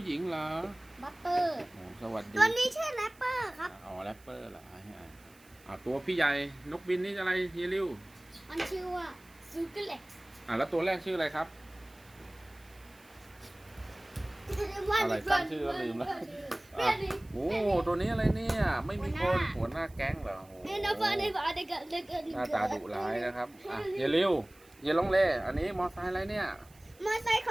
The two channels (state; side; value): noise; right; hiss, 27 dB below the sound